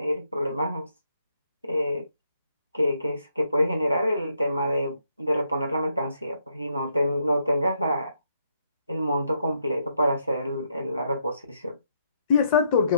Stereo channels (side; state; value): both; inverted; correlation -0.76